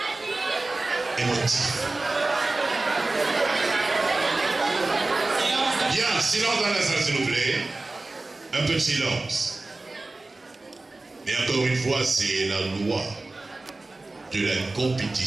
émotif. Bien, silence dans la salle, s'il vous plaît. Un peu de silence. Mais encore une fois, c'est la loi de la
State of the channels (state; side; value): quieter; left; 3.1 dB